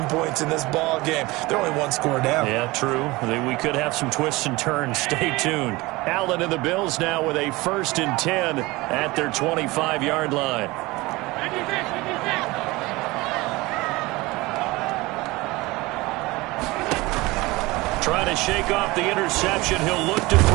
points in this ball game. They're only 1 score down. Yeah, true. We could have some twists and turns. Stay tuned. Allen and the Bills now with a 1st and 10 at their 25-yard line. Trying to shake off the interception. He'll look to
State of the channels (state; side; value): quieter; left; 21.6 dB